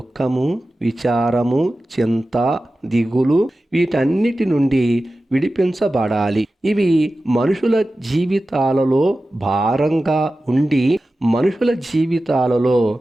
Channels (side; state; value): both; normal; correlation 0.95